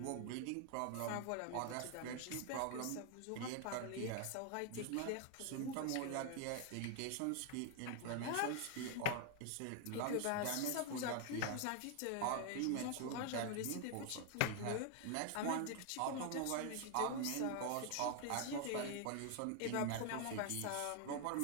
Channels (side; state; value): both; different; correlation 0.00